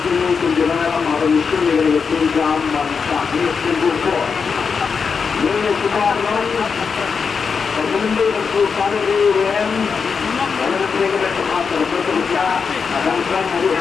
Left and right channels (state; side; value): quieter; right; 5.7 dB